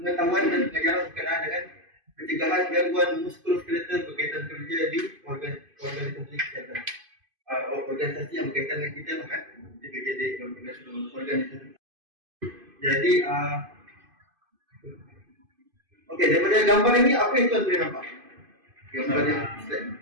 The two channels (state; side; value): late; left; 2.5 ms